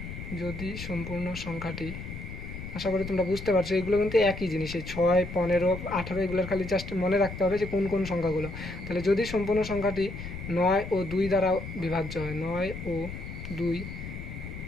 সংখ্যাটি, আশা করি তোমরা বুঝতে পারছো, এগুলো কিন্তু একই জিনিস, এই 6, 15, 18 এগুলোর খালি জাস্ট মনে রাখতে হবে যে কোন কোন সংখ্যাগুলো। তাহলে যদি সম্পূর্ণ সংখ্যাটি 9 ও 2 দ্বারা বিভাজ্য হয়, 9 ও 2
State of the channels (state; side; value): noise; left; rumble, 9 dB below the sound